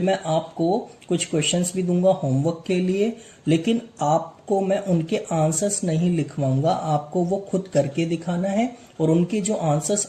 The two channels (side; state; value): both; identical; correlation 1.00